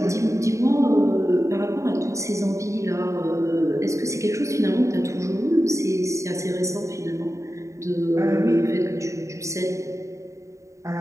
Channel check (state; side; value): late; left; 0.15 ms